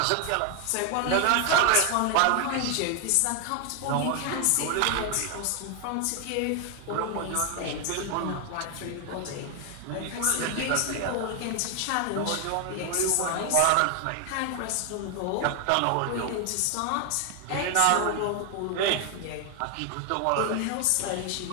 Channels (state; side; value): different; both; correlation 0.00